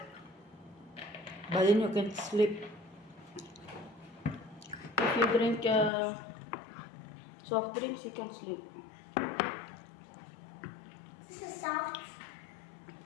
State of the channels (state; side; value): drops out; right; at 5.9 s